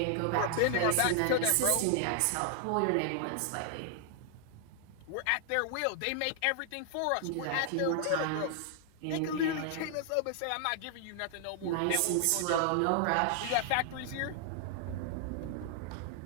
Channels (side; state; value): both; different; correlation 0.00